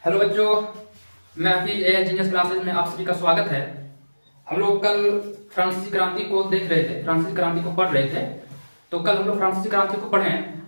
Hello बच्चों, मैं Hafeez genius classes में आप सभी का स्वागत है। हम लोग कल फ्रांसीसी क्रांति को देख रहे थे, फ्रांसीसी क्रांति को पढ़ रहे थे। तो कल हम लोग फ्रांसीसी क्रांति को पढ़े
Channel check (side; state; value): both; inverted; correlation -1.00